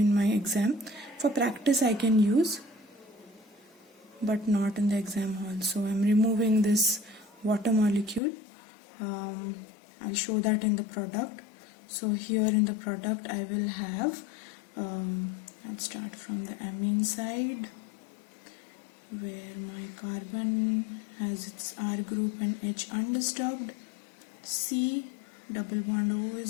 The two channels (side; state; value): right; drops out; at 8.2 s